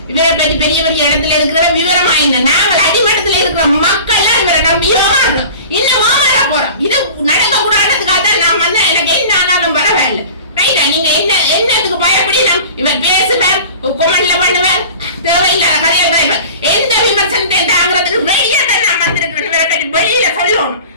இவரை பற்றி பெரிய பெரிய இடத்துல இருக்கிற விவரமா இல்லை. நாங்கள் அடிமட்டத்தில் இருக்கிற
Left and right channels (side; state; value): both; inverted; correlation -0.40